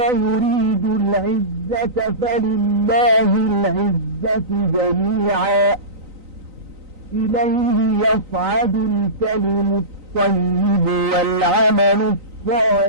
يريد العزة فلله العزة جميعا إليه يصعد الكلم الطيب والعمل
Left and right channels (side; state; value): left; late; 3.9 ms